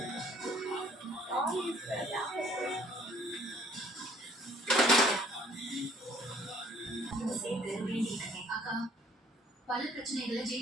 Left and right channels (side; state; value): both; normal; correlation 0.59